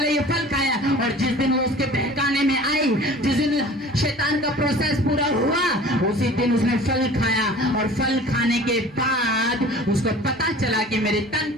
ये फल खाया। और जिस दिन वो उसके बहकाने में आई, जिस दिन शैतान का प्रोसेस पूरा हुआ, उसी दिन उसने फल खाया। और फल खाने के बाद उसको पता चला कि मेरे तन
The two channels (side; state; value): both; normal; correlation 0.44